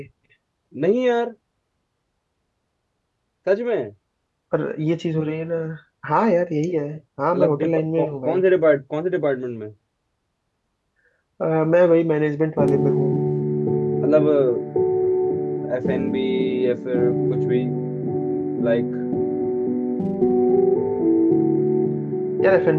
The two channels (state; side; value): identical; both; correlation 1.00